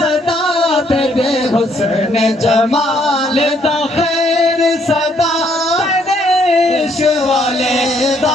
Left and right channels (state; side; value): normal; both; correlation 0.69